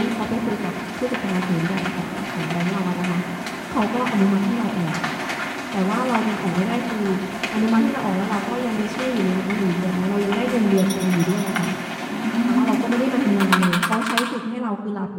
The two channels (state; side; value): identical; both; correlation 1.00